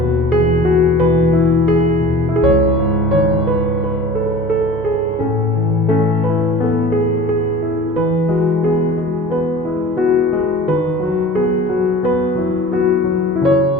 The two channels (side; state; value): right; noise; hum, 26 dB below the sound